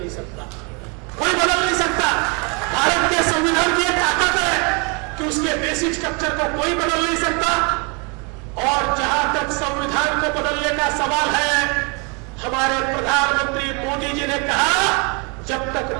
सकता, कोई बदल नहीं सकता। भारत के संविधान की एक ताकत है कि उसके बेसिक स्ट्रक्चर को कोई बदल नहीं सकता। और जहां तक संविधान को बदलने का सवाल है, हमारे प्रधानमंत्री मोदी जी ने कहा जब तक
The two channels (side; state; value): left; quieter; 32.8 dB